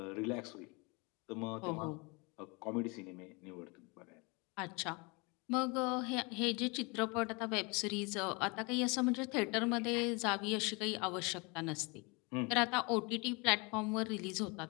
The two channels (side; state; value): right; quieter; 28.8 dB